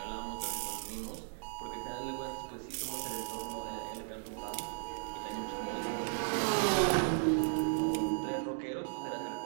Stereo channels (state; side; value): silent; left; digital silence